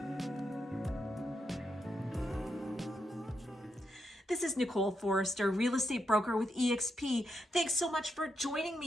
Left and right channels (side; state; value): both; normal; correlation 0.82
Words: This is Nicole Forrester, real estate broker with eXp. Thanks so much for joining